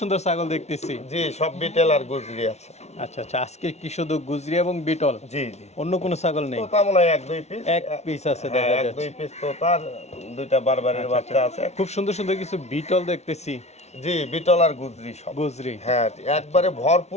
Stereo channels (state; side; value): late; right; 0.32 ms